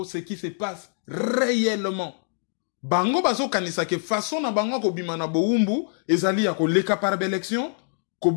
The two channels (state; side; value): silent; right; digital silence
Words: ce qui se passe réellement. Bango bazo kanisa ke façon na bango ko bima na boumbu ezali ako leka par élection ko